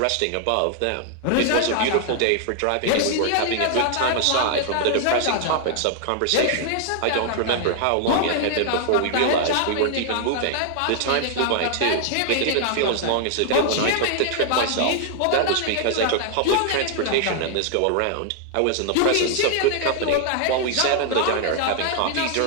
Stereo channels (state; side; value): different; both; correlation 0.00